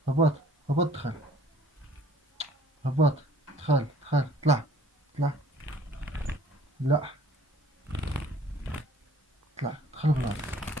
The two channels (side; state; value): both; normal; correlation 0.55